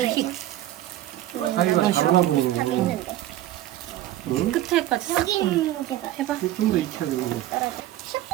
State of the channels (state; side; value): quieter; left; 14.1 dB